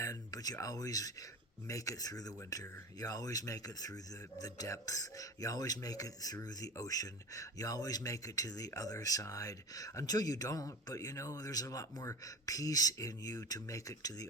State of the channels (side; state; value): both; normal; correlation 0.31